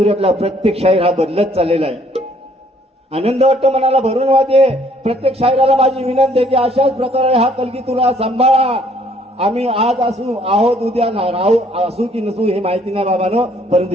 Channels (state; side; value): normal; both; correlation 0.63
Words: प्रत्येक शाहीर हा बदलत चाललेला आहे. आनंद वाटतो, मनाला भरून वाटते. प्रत्येक शाहिराला माझी विनंती आहे की अशाच प्रकारे हा कलगीतुरा सांभाळा. आम्ही आज आहोत, उद्या राहू, असू की नसू हे माहिती नाही बाबांनो,